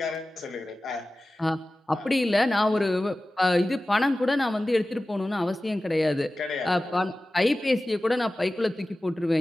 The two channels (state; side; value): normal; both; correlation 0.96